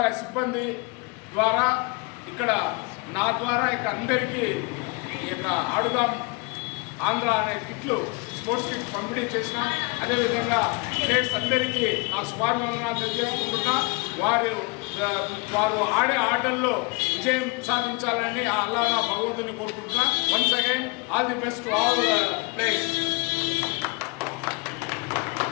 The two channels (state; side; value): quieter; right; 29.3 dB